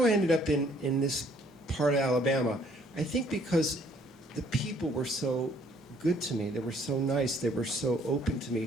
I ended up in this part of Alabama. I think because the people were so good to me, they were so nice, they were so open to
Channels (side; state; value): both; normal; correlation 0.62